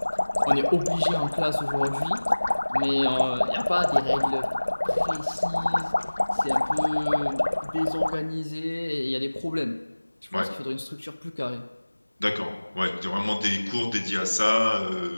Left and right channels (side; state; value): both; inverted; correlation -1.00